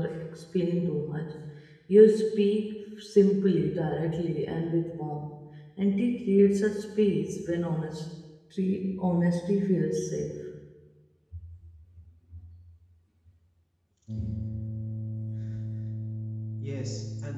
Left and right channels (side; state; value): both; identical; correlation 1.00